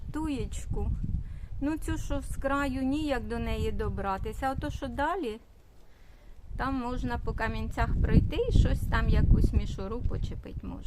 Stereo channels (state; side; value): identical; both; correlation 1.00